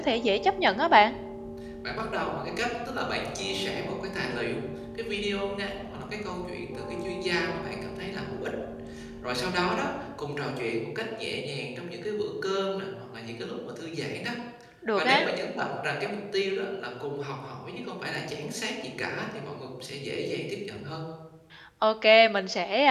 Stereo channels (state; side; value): identical; both; correlation 1.00